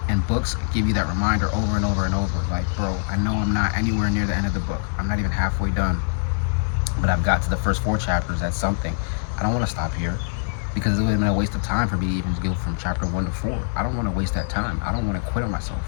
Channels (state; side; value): silent; right; digital silence